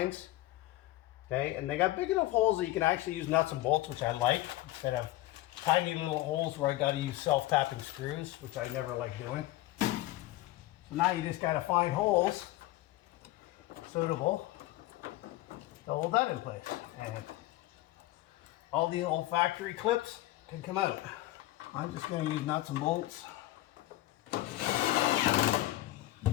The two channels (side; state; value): right; quieter; 16.7 dB